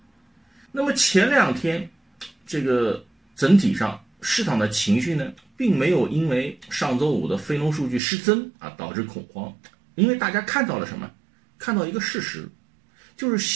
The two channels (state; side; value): drops out; left; at 8.0 s